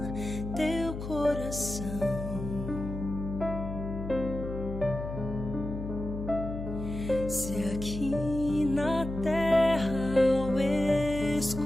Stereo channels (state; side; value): noise; left; hum, 7 dB below the sound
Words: teu coração. Se aqui na terra ao